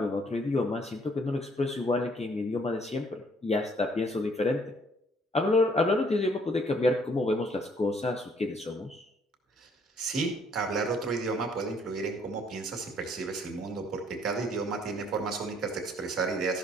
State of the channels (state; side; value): normal; both; correlation 0.64